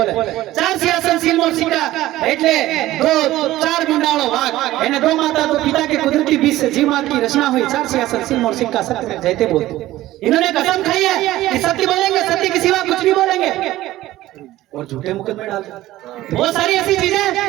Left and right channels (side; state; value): left; quieter; 15.8 dB